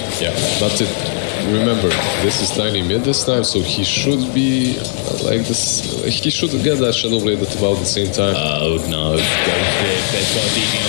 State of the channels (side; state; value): right; silent; digital silence